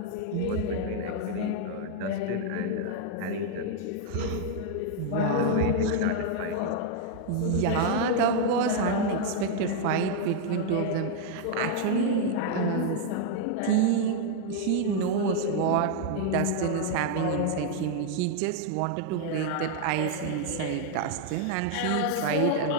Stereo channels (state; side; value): different; both; correlation 0.00